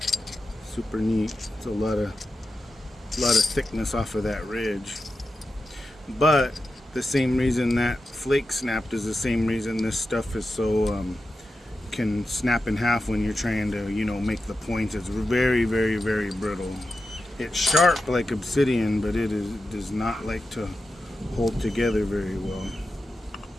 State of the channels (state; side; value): normal; both; correlation 0.91